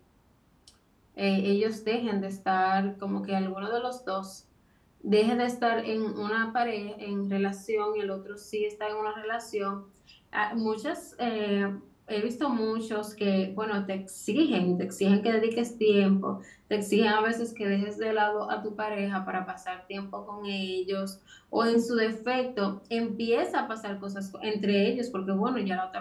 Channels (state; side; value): identical; both; correlation 1.00